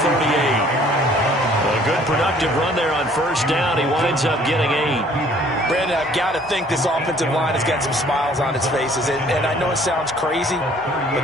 A good productive run there on 1st down. He winds up getting 8. Brandon, I've got to think this offensive line has got some smiles on its faces. And I know it sounds crazy,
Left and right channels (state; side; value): normal; both; correlation 0.57